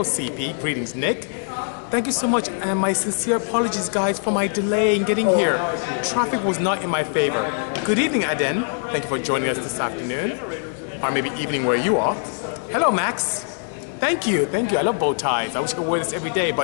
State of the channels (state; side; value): silent; right; 56 dB below the other